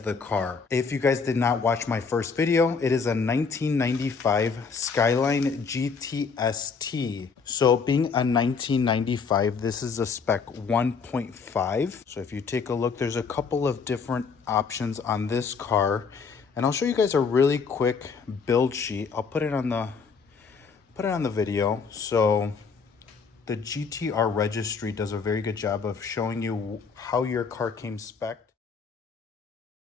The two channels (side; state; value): right; quieter; 5.4 dB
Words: the car. If you guys did not watch my first video, it is a 1995 Skyline GTST. So being a 1995, this is a spec 1.5. So if you take a look, there's a couple of different options on this car. And I'll show you guys a really quick build sheet. I'll put it on the video. So the GTR registry does a very good job of showing you how your car came spec'd.